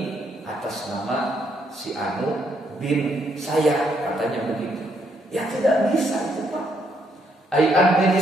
atas nama si Anu bin saya, katanya begitu. Ya tidak bisa itu Pak.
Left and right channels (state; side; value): normal; both; correlation 0.74